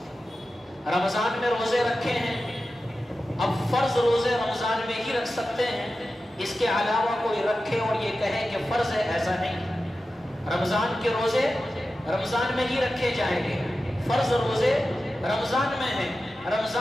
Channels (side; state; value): both; normal; correlation 0.93